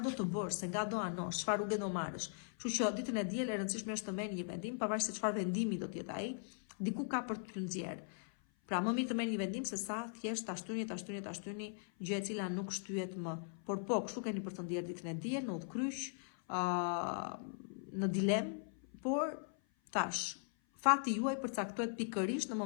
do të bësh, se nga do anosh, çfarë rrugë do marrësh. Kështu që ditën e diel e rëndësishme është të merrni një vendim, pavarësisht se çfarë vendimi do të jetë ai, diku ka për të nxjerr. Pra më mirë të merrni një vendim se sa thjesht ta shtyni gjë e cila nuk shtyhet më. Por po, kështu keni për të ndjerë ditën e diel në udhkryq, në dilemë, por tash fati juaj përcaktohet pikërisht në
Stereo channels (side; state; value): right; silent; 51 dB below the other